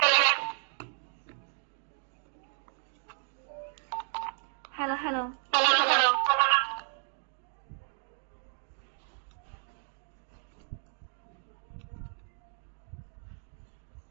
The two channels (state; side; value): silent; left; 56 dB below the other